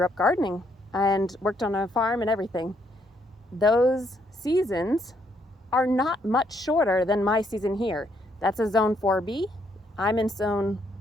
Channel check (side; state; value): both; normal; correlation 0.72